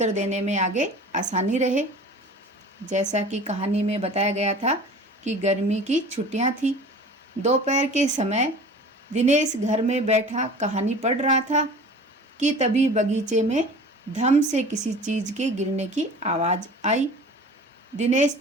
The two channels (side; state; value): both; normal; correlation 0.42